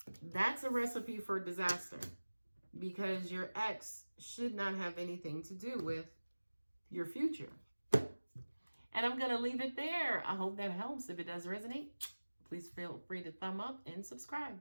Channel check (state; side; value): inverted; both; correlation -1.00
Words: That's a recipe for disaster, because your ex should not have anything to do with your future. And I'm going to leave it there. I hope that helps. If it does resonate, please feel free to thumb up and subscribe.